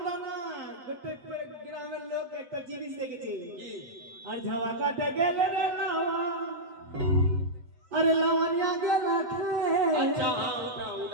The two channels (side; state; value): left; late; 7.8 ms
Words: না গোটে গ্রামের লোক একটা জিনিস দেখেছি। কি? আর ঝাওয়া কাটা গেলে রে লাওয়া, আরে লাওয়ানিয়া গেলা আচ্ছা খে, হ্যাঁ